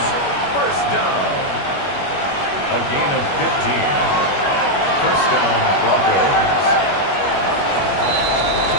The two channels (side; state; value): right; late; 21 ms